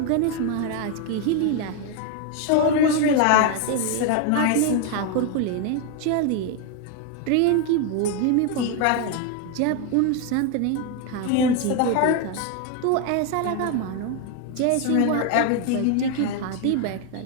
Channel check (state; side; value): different; both; correlation 0.01